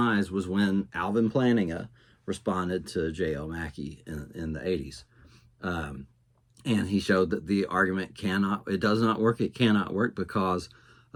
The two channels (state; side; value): identical; both; correlation 1.00